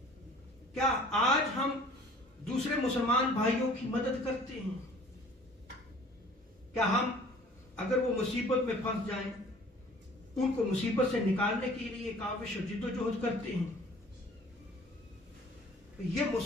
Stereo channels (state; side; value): normal; both; correlation 0.50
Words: کیا آج ہم دوسرے مسلمان بھائیوں کی مدد کرتے ہیں؟ کیا ہم اگر وہ مصیبت میں پھنس جائیں ان کو مصیبت سے نکالنے کے لیے کاوش اور جد و جہد کرتے ہیں؟ یہ